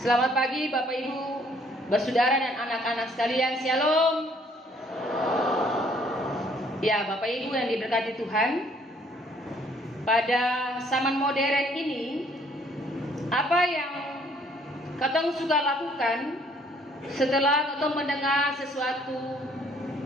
pagi Bapak Ibu, bersaudara dan anak-anak sekalian, Shalom. Ya Bapak Ibu yang diberkati Tuhan, pada zaman modern ini, apa yang katong suka lakukan setelah katong mendengar sesuatu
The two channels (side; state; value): both; normal; correlation 0.62